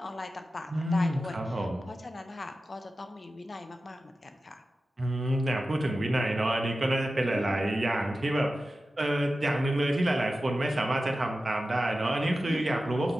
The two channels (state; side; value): normal; both; correlation 0.93